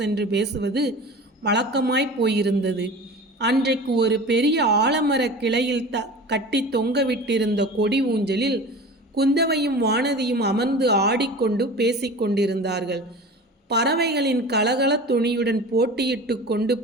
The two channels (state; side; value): normal; both; correlation 0.36